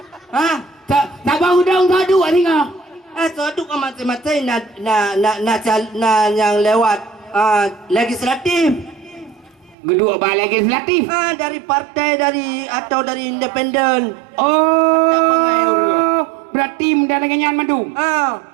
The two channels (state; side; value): drops out; left; at 9.8 s